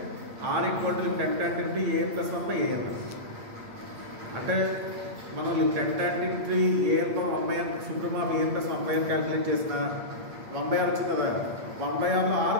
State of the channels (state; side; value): late; left; 8.6 ms